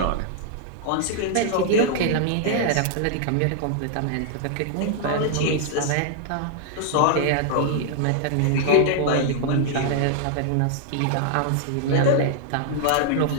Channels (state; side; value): different; both; correlation -0.01